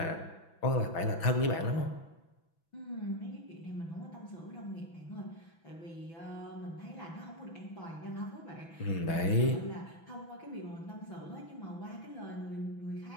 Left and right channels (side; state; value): right; late; 6.1 ms